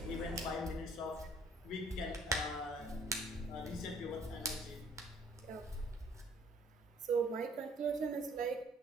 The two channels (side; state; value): both; normal; correlation 0.59